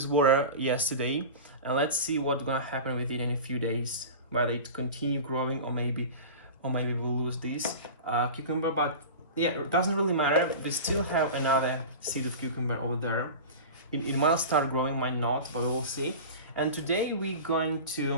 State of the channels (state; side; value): inverted; both; correlation -0.31